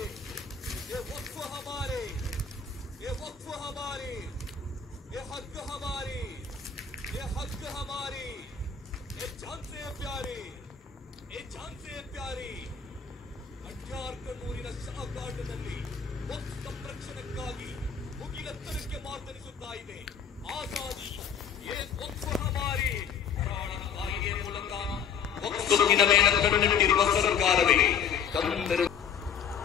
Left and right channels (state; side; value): quieter; right; 7.0 dB